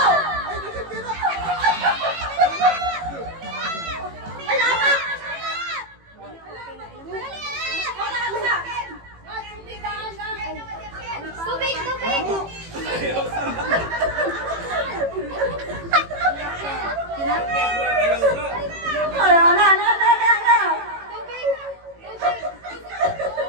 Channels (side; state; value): left; late; 18 ms